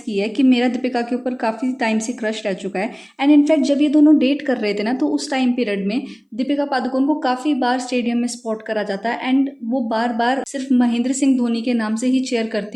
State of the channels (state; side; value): identical; both; correlation 1.00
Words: है कि मेरा दीपिका के ऊपर काफ़ी टाइम से क्रश रह चुका है। एंड इनफैक्ट जब ये दोनों डेट कर रहे थे ना, तो उस टाइम पीरियड में दीपिका पादुकोण को काफ़ी बार स्टेडियम में स्पॉट करा जाता है एंड वो बार बार सिर्फ महेंद्र सिंह धोनी के नाम से ही चेयर